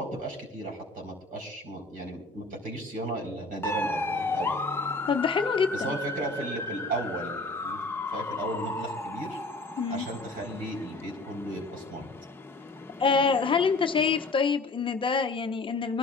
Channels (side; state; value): right; quieter; 3.2 dB